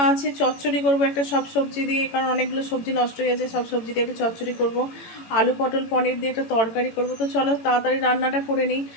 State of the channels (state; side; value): late; right; 18 ms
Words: আছে, চচ্চড়ি করব একটা সব সবজি দিয়ে, কারণ অনেকগুলো সবজি নষ্ট হয়ে গেছে। সব সবজি দিয়ে একটা চচ্চড়ি করব, আলু পটল পনির দিয়ে একটা তরকারি করব। তো চলো তাড়াতাড়ি রান্নাটা করে নিই।